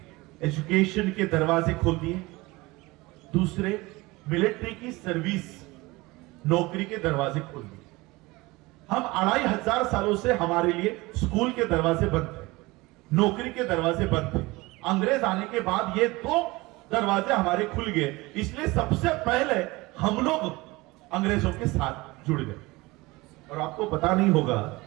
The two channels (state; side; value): quieter; left; 22.0 dB